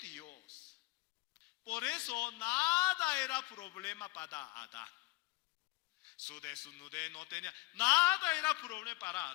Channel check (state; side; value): quieter; right; 21.6 dB